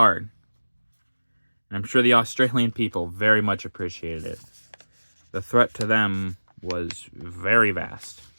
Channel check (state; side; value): inverted; both; correlation -1.00